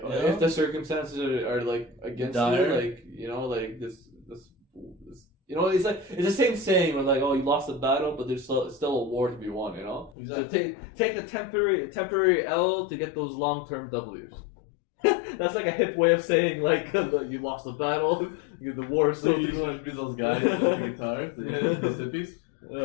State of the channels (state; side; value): drops out; right; at 10.1 s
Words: the circumstances are like, against you, like, you know, like, this, you know, it's like, it's the same saying where, like, oh, you lost the battle, but there's still a war to be won, you know? Exactly. So take a temporary L to get those long-term W's. That's like a hip way of saying, like, you lost the battle, the war. So you want to be those guys with the guitars, those hippies?